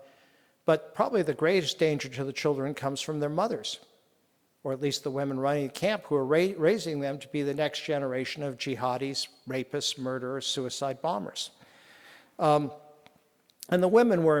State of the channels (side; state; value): both; identical; correlation 1.00